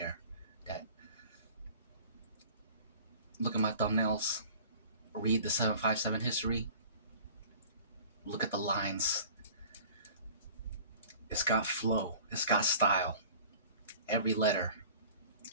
That look at my thumbnails, read the 757 history, look at the lines. It's got flow, it's got style. Every letter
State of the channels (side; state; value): both; inverted; correlation -0.44